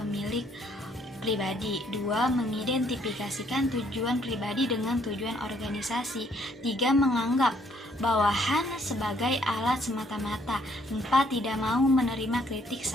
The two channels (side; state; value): both; normal; correlation 0.66